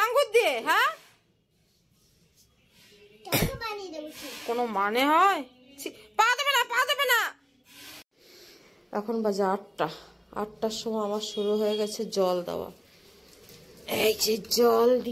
আঙ্গুর দিয়ে? হ্যাঁ, কোনো মানে হয়? পা দেবে না, পা দেবে না। এখন বাজে 8টার সময় আমার শুরু হয়ে গেছে জল দেওয়া। এই যে জল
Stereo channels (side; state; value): both; identical; correlation 1.00